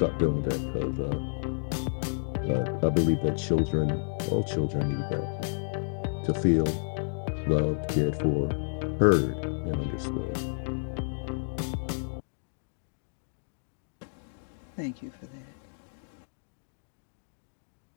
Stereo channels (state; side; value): silent; right; digital silence